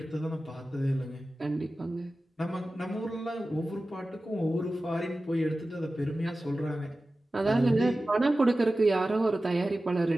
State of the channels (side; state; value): both; normal; correlation 0.95